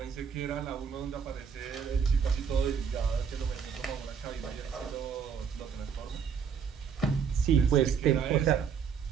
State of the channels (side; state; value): left; quieter; 6.8 dB